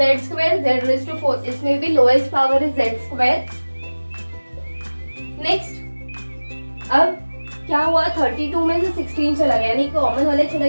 square z raise to 4 इसमें भी lowest power is z square. Next अब क्या हुआ 32 में से 16 चला गया, यानी कॉमन वाले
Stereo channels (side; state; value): both; inverted; correlation -1.00